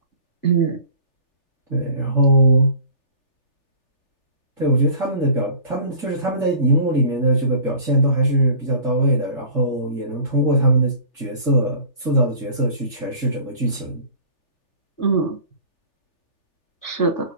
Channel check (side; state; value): right; late; 3.4 ms